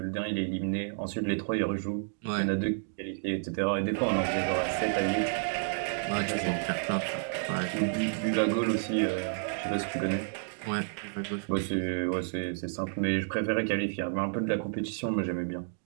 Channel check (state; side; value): silent; left; digital silence